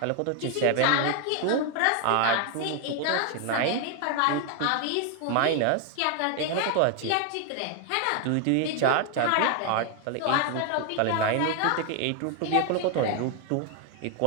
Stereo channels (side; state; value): both; different; correlation 0.01